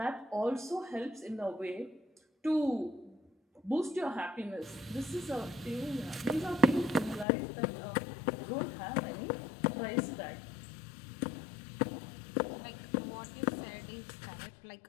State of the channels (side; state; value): right; drops out; at 7.2 s